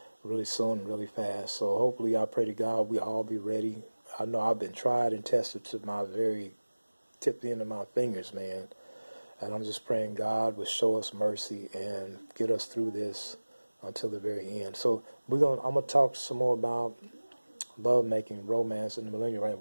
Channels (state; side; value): inverted; both; correlation -1.00